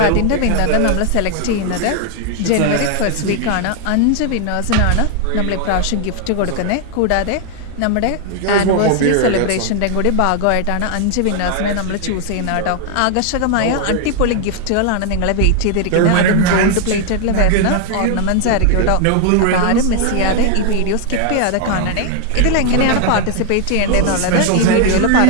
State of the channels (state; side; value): different; both; correlation 0.00